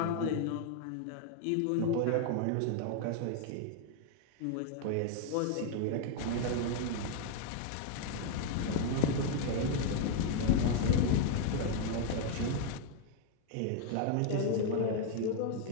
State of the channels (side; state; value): both; different; correlation 0.00